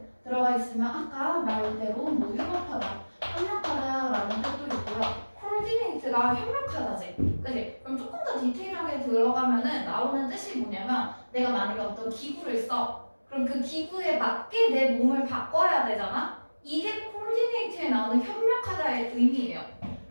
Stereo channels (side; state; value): both; inverted; correlation -1.00